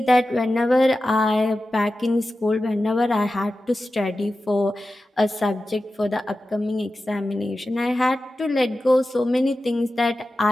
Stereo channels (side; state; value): both; normal; correlation 0.93